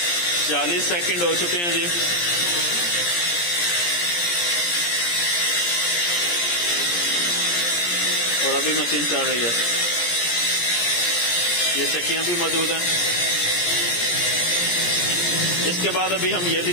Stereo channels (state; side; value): late; right; 17 ms